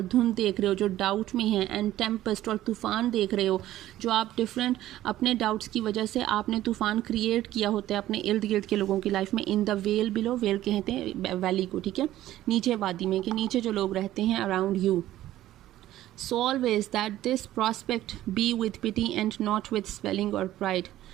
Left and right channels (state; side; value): quieter; left; 14.1 dB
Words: धुंध देख रहे हो जो डाउट में है, एंड टेम्पेस्ट, और तूफ़ान देख रहे हो जो आप डिफरेंट अपने डाउट्स की वजह से आपने तूफ़ान क्रिएट किया होता है अपने इर्द गिर्द के लोगों की लाइफ में. इन द वेल बिलो, वेल कहते हैं वैली को, ठीक है, नीचे वादी में, कि नीचे जो लोग रहते हैं around you. So always that this prospect be with pity and not with swelling or pride.